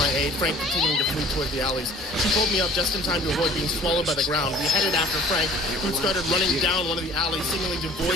aid, Frank continuing to flee towards the alleys. She pulled me up just in time to avoid being swallowed by the ground. We headed after Frank, who started running down one of the alleys, seemingly devoid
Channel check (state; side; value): normal; both; correlation 0.49